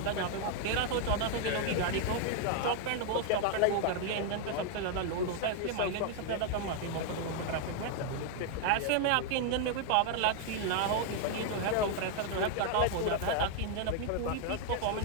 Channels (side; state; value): both; different; correlation 0.00